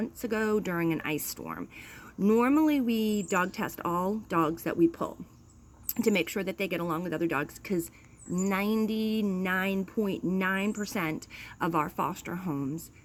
ago during an ice storm. Normally we dog test all dogs that we pull to make sure that they get along with other dogs because 99.9% of our foster homes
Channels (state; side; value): identical; both; correlation 1.00